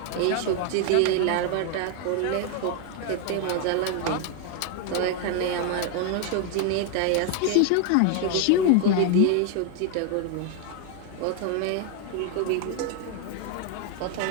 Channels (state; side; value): different; both; correlation 0.01